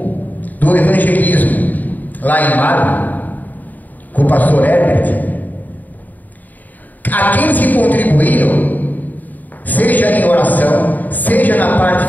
do evangelismo lá em Mário, com o pastor Herbert, aqueles que contribuíram, seja em oração, seja na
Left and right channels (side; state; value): right; late; 0.083 ms